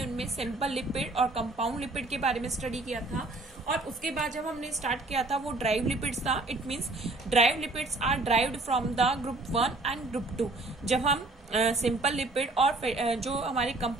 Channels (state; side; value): quieter; left; 3.0 dB